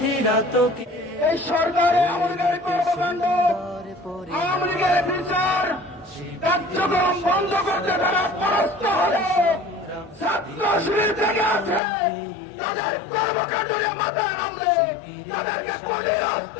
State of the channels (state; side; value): drops out; right; at 11.8 s